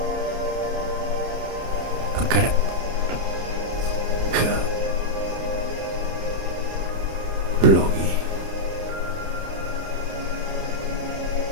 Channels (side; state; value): left; late; 30 ms